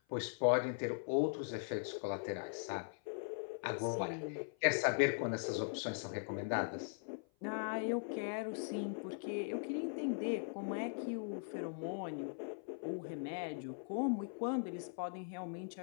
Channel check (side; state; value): right; silent; 51 dB below the other